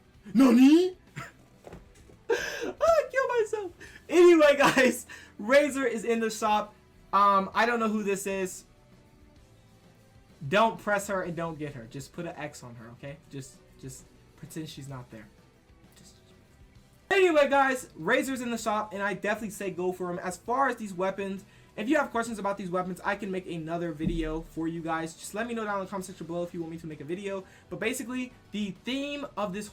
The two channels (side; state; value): both; identical; correlation 1.00